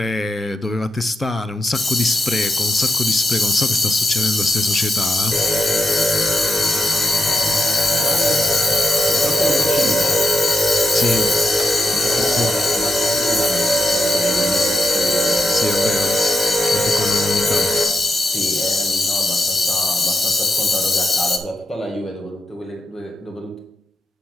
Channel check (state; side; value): normal; both; correlation 0.88